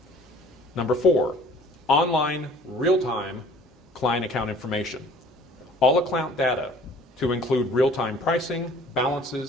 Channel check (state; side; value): normal; both; correlation 0.51